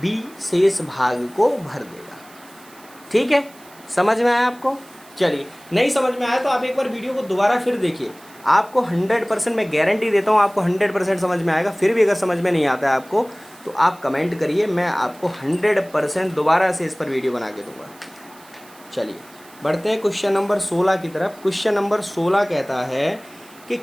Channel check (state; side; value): noise; right; hiss, 24 dB below the sound